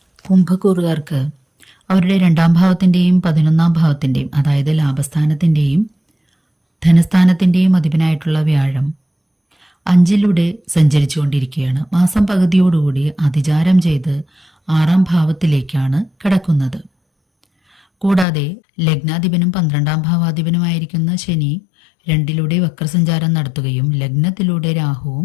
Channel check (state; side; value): drops out; right; at 18.2 s